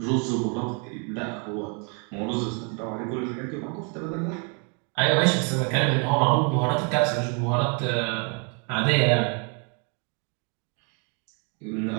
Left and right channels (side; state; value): left; quieter; 37.0 dB